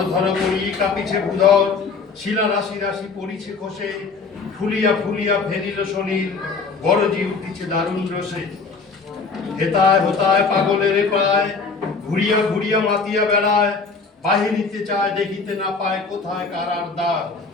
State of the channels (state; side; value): quieter; right; 4.6 dB